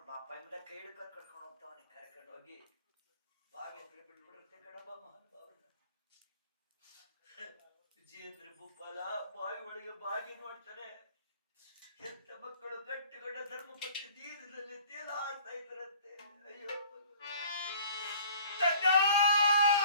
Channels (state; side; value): inverted; both; correlation -0.51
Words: ಬಾಪ ಎಂಬುದ ಕೈ ಹಿಡ್ಕೊಂಡು ಕರ್ಕೊಂಡು ಹೋಗ್ತಾವನಿ. ಕರ್ಕೊಂಡು ಹೋಗಿ ಬಾವಿ ಹತ್ರ ಬಿಟ್ಬಿಡುತ್ತೆ ಕಣಬ ಮಹಾನುಭಾವನ. ವಿಜಯೇಂದ್ರ ಭೂಪಾಲ ಬಾವಿ ಒಳಗೆ ಬಾಗಿ ನೋಡ್ತಾನೆ. ಎಂತ ಮಕ್ಕಳು ಗಟ್ಟಿಗಡ್ಡ ಧರ್ಮಪತ್ನಿ ನೀರಿನಲ್ಲಿ ತೇಲಾಡ್ತಾ ಇದ್ರಂತೆ. ಅಯ್ಯೋ